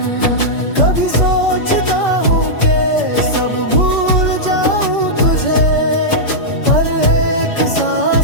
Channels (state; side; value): late; right; 5.2 ms